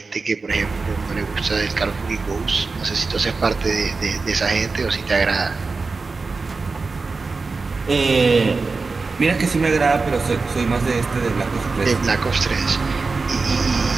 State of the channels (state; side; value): quieter; left; 4.1 dB